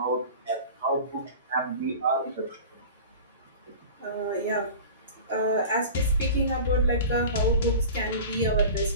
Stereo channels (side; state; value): both; inverted; correlation -0.36